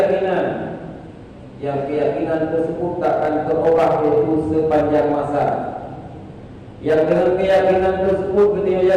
yang keyakinan tersebut takkan terubah yaitu sepanjang masa. Yang dengan keyakinan tersebut kita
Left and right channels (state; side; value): identical; both; correlation 1.00